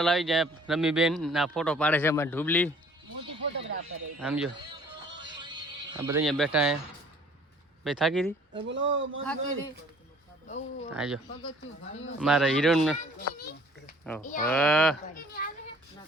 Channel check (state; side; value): normal; both; correlation 0.54